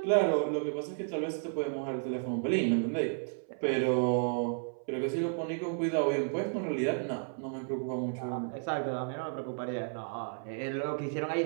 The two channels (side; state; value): left; silent; 56 dB below the other